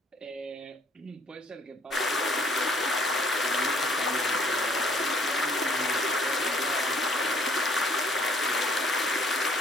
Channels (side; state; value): both; normal; correlation 0.61